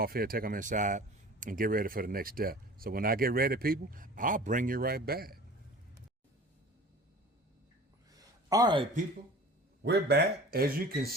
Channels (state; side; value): normal; both; correlation 0.42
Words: here, take them inside, and get ready for the next step. So when I get ready, people, I'll bring you right back. All right, people, we're back. As you can